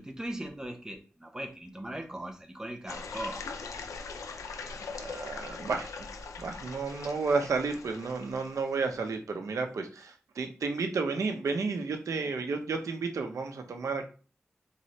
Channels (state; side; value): quieter; left; 3.1 dB